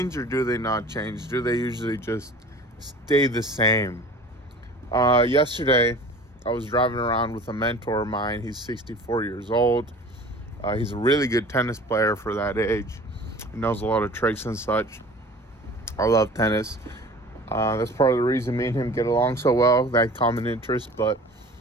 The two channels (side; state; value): both; normal; correlation 0.43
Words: or do they not change? Do they usually just stay the same? Yesterday, I was driving around with a mentor of mine. He's 64 years old. He's a really good tennis player for that age. He knows a lot of tricks and such. I love tennis. That's part of the reason me and him get along so well, that common interest. But